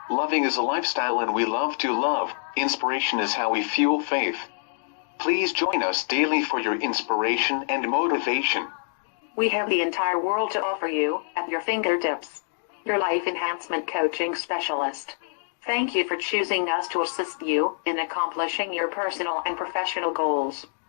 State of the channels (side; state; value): right; silent; digital silence